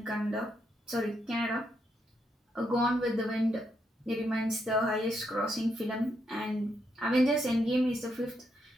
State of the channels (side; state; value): both; normal; correlation 0.79